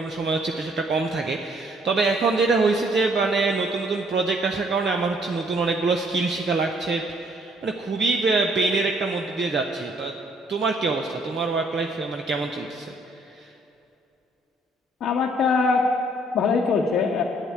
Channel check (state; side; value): normal; both; correlation 0.64